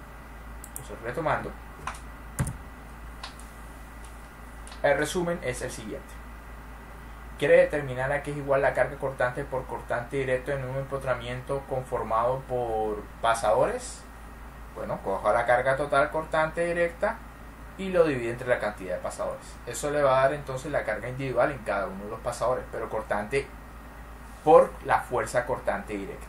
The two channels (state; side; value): identical; both; correlation 1.00